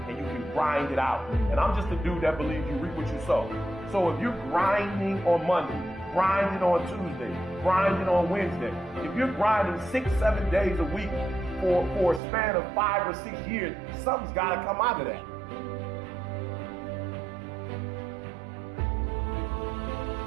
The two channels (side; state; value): left; drops out; at 12.2 s